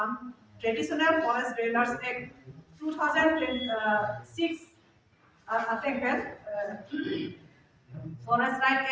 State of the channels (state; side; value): identical; both; correlation 1.00